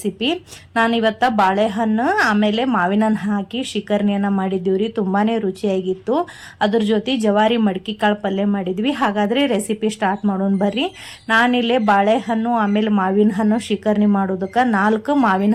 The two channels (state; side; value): identical; both; correlation 1.00